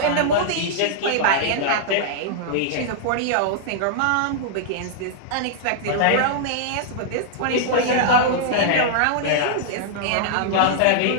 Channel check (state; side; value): different; both; correlation -0.01